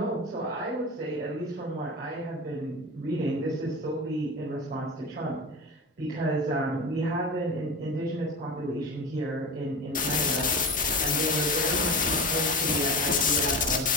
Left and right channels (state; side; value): normal; both; correlation 0.27